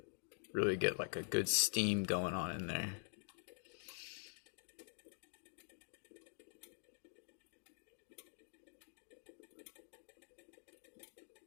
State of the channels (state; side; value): silent; right; digital silence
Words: really get like a good steam going on in there.